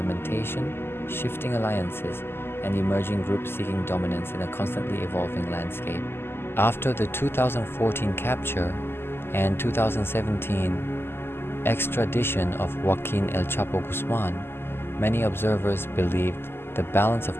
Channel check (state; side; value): late; right; 0.11 ms